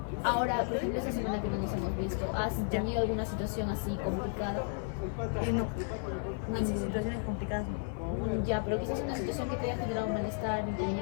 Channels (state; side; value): silent; right; 55 dB below the other